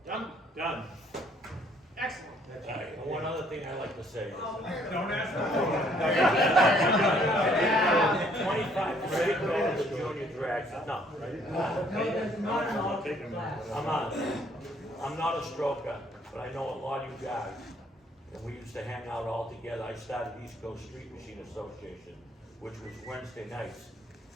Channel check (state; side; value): normal; both; correlation 0.63